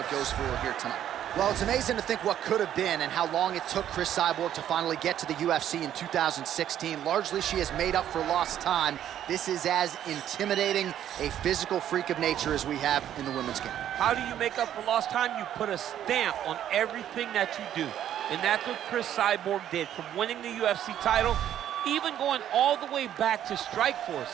goes for her here tonight. Well, it's amazing to think what could have been and how long it took Cris Cyborg to finally get to the UFC in 2016. Largely, she has made up for lost time. This is as intimidating a physical freak of nature as we have in the women's game. How do you make up for lost time? You put a stamp on everything that you do. And that's what Cris Cyborg did, from winning the UFC title, even going all the way back to Strikeforce.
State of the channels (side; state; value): left; quieter; 10.9 dB